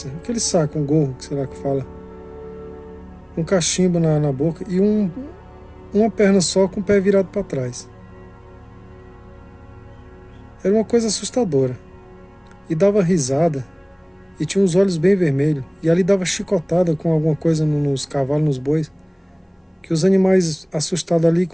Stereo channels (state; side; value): identical; both; correlation 1.00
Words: aquele saco, um gorro, sei lá que fala, um cachimbo na boca e uma perna só com o pé virado para trás. Era uma coisa assustadora. E dava risada e tinha os olhos bem vermelhos. E ali dava chicotada com alguma coisa nos cavalos, nos bois, que os animais assustados ali